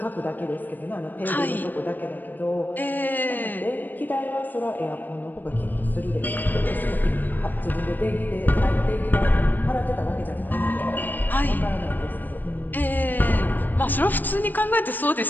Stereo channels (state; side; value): late; right; 0.088 ms